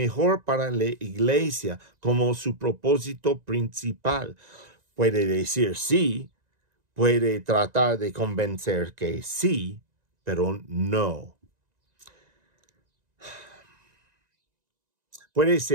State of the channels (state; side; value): late; left; 1.9 ms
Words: para la iglesia como su propósito principal. Puede decir sí, puede tratar de convencer que sí, pero no. Puede